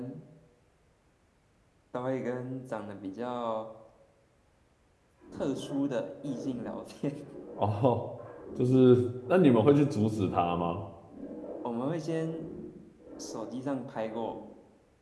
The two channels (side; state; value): both; identical; correlation 1.00